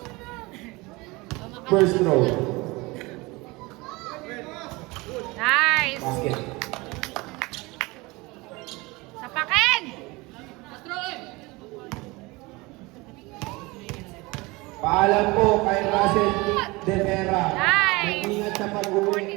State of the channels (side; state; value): left; quieter; 23.5 dB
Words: First throw. Nice! Basket. Sapakin! Paalam po kay Russell De Vera. Nice! Mag-ingat sa